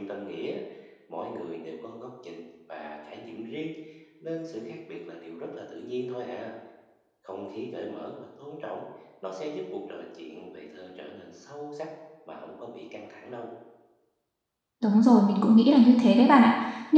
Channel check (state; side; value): identical; both; correlation 1.00